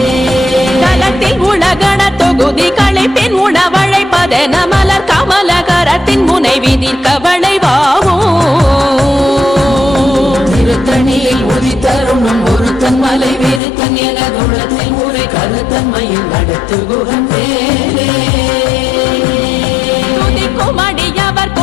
தலத்தில் உலகண தொகுதி களைப்பின் உணவழைப்பதென மலர் கமல கரத்தின் முனை விதிர்க்க வளைவாகும் திருத்தணியில் உதித்தருணும் ஒருத்தன் மலை விருத்தன் எனதுள்ளத்தில் ஊரை கருத்தன்மையில் நடத்து குகன் வேலே துதிக்கும் அடியவர்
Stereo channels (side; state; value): right; drops out; at 13.6 s